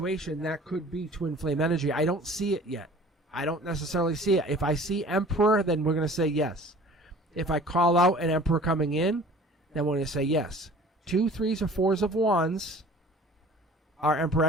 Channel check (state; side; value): normal; both; correlation 0.47